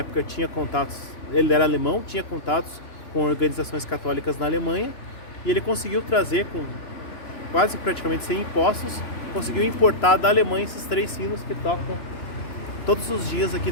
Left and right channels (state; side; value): late; right; 2.9 ms